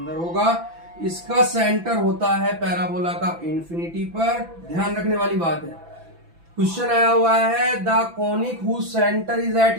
होगा। इसका सेंटर होता है पैराबोला का इन्फिनिटी पर। ध्यान रखने वाली बात है, क्वेश्चन आया हुआ है the conic whose centre is at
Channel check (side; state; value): left; late; 6.0 ms